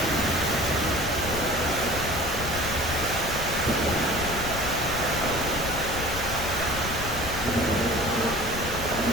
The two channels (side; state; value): left; noise; rumble, 7 dB below the sound